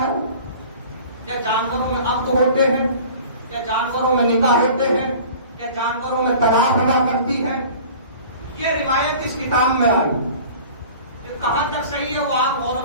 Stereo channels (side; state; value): both; inverted; correlation -0.44